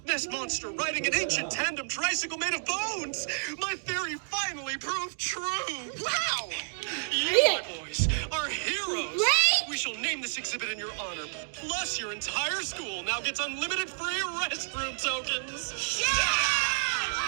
Ness Monster riding an ancient tandem tricycle made of bones. My theory finally proved true. Wow! You, my boys, are heroes. Right? We shall name this exhibit in your honor. Plus, your entire school now gets unlimited free restroom tokens.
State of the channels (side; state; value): left; silent; digital silence